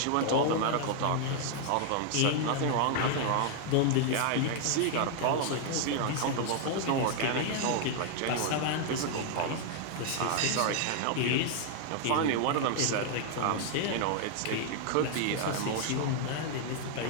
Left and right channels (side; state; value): both; different; correlation 0.00